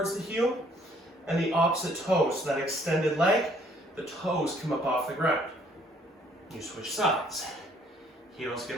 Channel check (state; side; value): normal; both; correlation 0.63